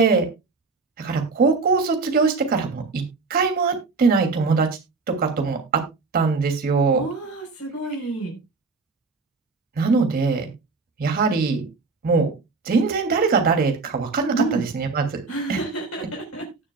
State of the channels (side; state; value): left; quieter; 4.2 dB